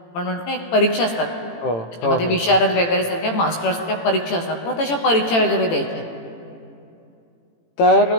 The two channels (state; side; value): late; right; 18 ms